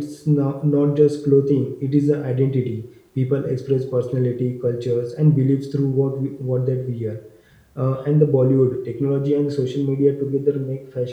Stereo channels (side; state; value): both; identical; correlation 1.00